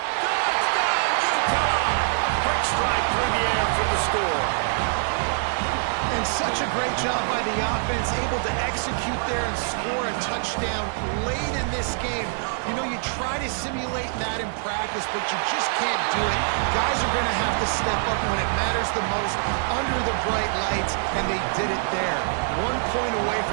Touchdown, Utah! Quick strike through the air for the score. And such a great job by the offense, able to execute there and score a touchdown late in this game. You know, you try to simulate that in practice, but you just can't do it. Guys are going to have to step up when it matters the most under the bright lights, and they did it there. 1 point away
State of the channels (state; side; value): silent; left; digital silence